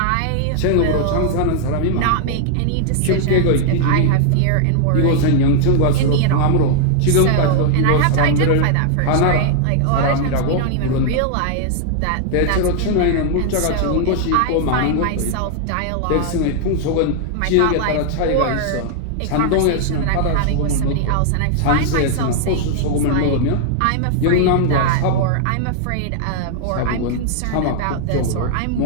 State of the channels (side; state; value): both; different; correlation -0.01